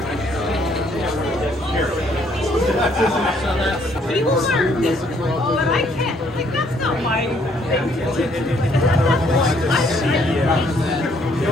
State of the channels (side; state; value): both; normal; correlation 0.66